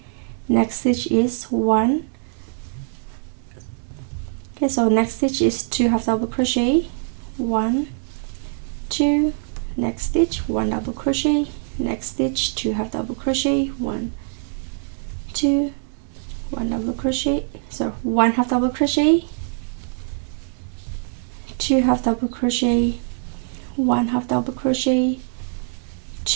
Next stitch is 1. Okay, so next stitch is 2 half double crochet, 1, 2, next stitch 1 double crochet, next stitch 2 half double crochet, 1, 2, 1 double crochet, so 1 half double crochet, 2 half double crochet, 1 half double crochet,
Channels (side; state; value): left; silent; digital silence